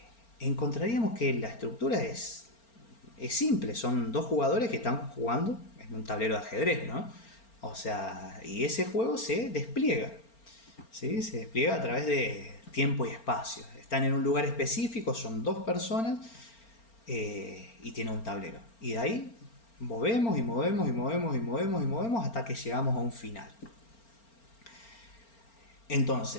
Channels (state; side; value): late; right; 4.4 ms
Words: encontraríamos que la estructura es simple, son dos jugadores que están jugando en un tablero de ajedrez, ¿no? O sea, y ese juego se despliega, ¿sí? Se despliega a través de tiempo y espacio. Están en un lugar específico, son dos personas y tiene un tablero. Y de ahí movemos y movemos y movemos y movemos y movemos hasta que llegamos a un final.